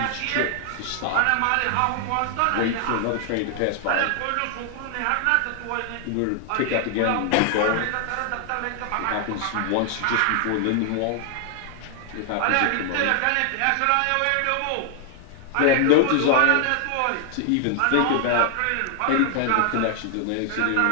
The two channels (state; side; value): different; both; correlation 0.00